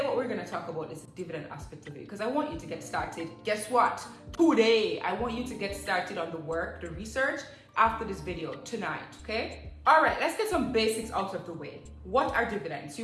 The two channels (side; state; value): both; identical; correlation 1.00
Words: what we're going to talk about is the dividend aspect of it, because I want you to get started. Guess what? Today, I want you to get started on the work, the research after this video tonight, okay? All right, let's get some basics out of the way. What are dividends?